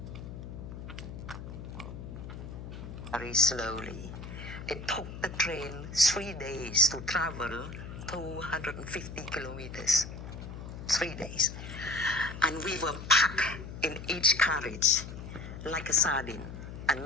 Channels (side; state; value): left; noise; hum, 10 dB below the sound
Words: slowly. It took the train 3 days to travel 250 kilometers. 3 days. And we were packed in each carriage like a sardine, and